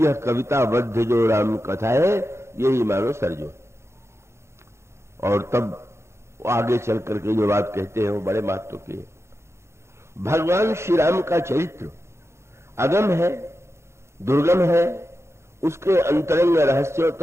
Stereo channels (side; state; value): left; late; 0.13 ms